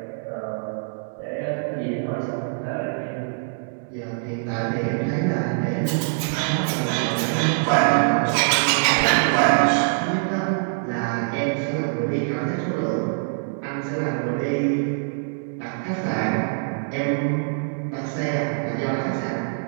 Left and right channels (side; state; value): left; silent; digital silence